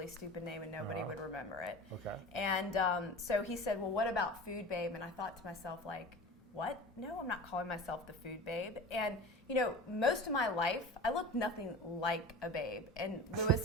stupid name and nobody would remember it. Okay. And so he said, well, what about Food Babe? And I thought to myself, like, what? No, I'm not calling myself the food babe. And, most of my life, I look nothing like a babe. And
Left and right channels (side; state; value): both; normal; correlation 0.34